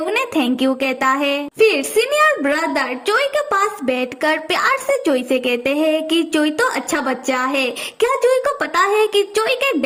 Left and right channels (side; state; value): both; identical; correlation 1.00